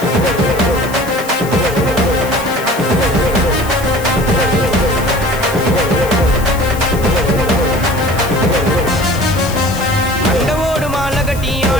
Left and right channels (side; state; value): left; noise; hiss, 14 dB below the sound